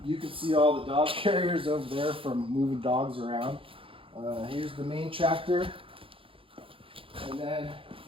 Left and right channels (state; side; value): late; left; 0.26 ms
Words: You can see all the dog carriers over there from moving dogs around. Here's the main tractor. And then